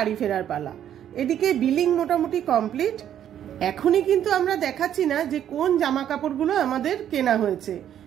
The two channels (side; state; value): left; quieter; 10.3 dB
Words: ফেরার পালা। এদিকে বিলিং মোটামুটি কমপ্লিট। এখনই কিন্তু আমরা দেখাচ্ছি না যে কোন জামা কাপড়গুলো আমাদের কেনা হয়েছে,